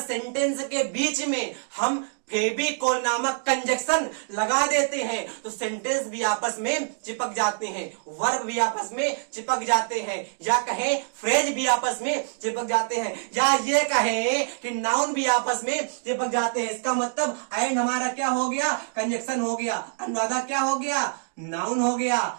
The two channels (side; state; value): left; silent; digital silence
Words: सेंटेंस के बीच में हम फेविकोल नामक कंजक्शन लगा देते हैं तो सेंटेंस भी आपस में चिपक जाते हैं, वर्ब भी आपस में चिपक जाते हैं, या कहें फ्रेज भी आपस में चिपक जाते हैं, या ये कहें कि नाउन भी आपस में चिपक जाते हैं। इसका मतलब एंड हमारा क्या हो गया? कंजक्शन हो गया। अनुराधा क्या हो गया? नाउन हो गया।